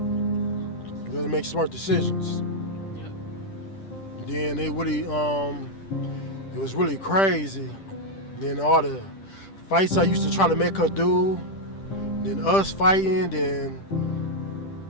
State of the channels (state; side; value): late; right; 10 ms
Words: You gotta make smart decisions. Yep. Then it was really crazy. Then all the fights I used to try to make her do, then us fighting, then